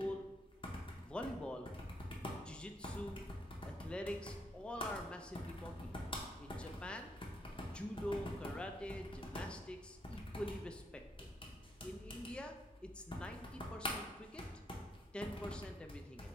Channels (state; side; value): normal; both; correlation 0.75